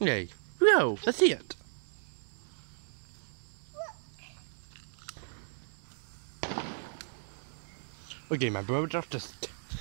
Okay, go, let's see it. Okay, my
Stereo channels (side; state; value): left; silent; digital silence